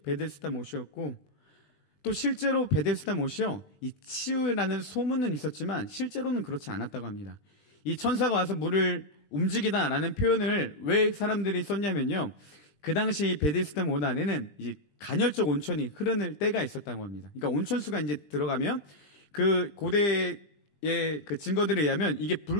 베데스다 못이었고, 또 실제로 베데스다 못이요, 이 치유라는 소문은 있었지만 실제로는 그렇지 않았다고 합니다. 이 천사가 와서 물을 움직이다라는 표현을 왜 사람들이 썼냐면요, 그 당시 베데스다 못 안에는 이제 간헐적 온천이 흐르는 때가 있었다고 합니다. 그러니까 온천수가 이제 들어가면 그 고대의 그 증거들에 의하면 이게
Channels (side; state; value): right; late; 20 ms